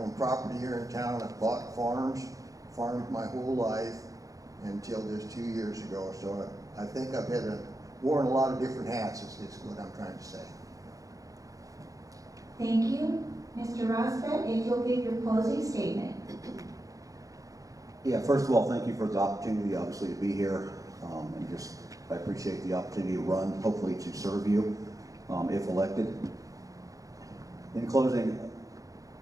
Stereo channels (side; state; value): left; late; 0.17 ms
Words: property here in town. I've bought farmed my whole life until just 2 years ago. So I think I've worn a lot of different hats is what I'm trying to say. Thank you. Mr. Rosbett, if you'll give your closing statement. Yeah, first of all, thank you for the opportunity, obviously, to be here. I appreciate the opportunity to run, hopefully to serve you, if elected. In closing,